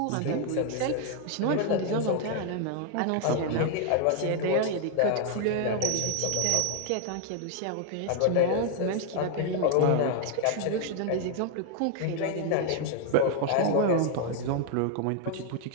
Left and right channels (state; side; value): different; both; correlation 0.00